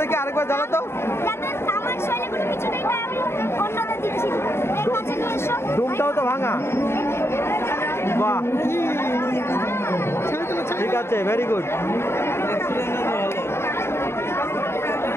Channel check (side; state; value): right; late; 0.12 ms